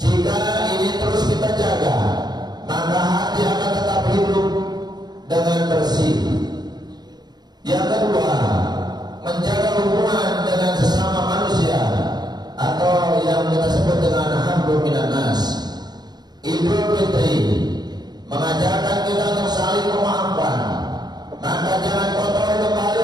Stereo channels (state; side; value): late; left; 0.20 ms